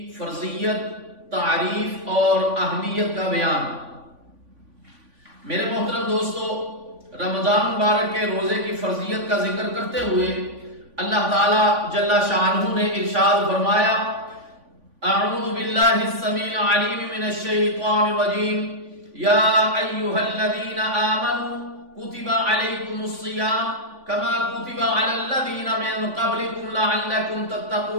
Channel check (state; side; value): late; left; 3.5 ms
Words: فرضیت، تعریف اور اہمیت کا بیان۔ میرے محترم دوستو، رمضان مبارک کے روزے کی فرضیت کا ذکر کرتے ہوئے اللہ تعالی جل شانہ نے ارشاد فرمایا، اعوذ باللہ السمیع العلیم من الشیطان الرجیم، یا ایھا الذین آمنوا کتب علیکم الصیام کما کتب علی الذین من قبلکم لعلکم